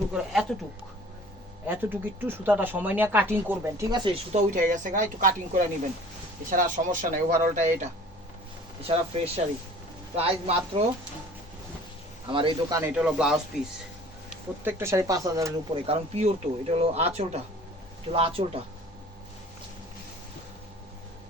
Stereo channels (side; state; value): both; normal; correlation 0.48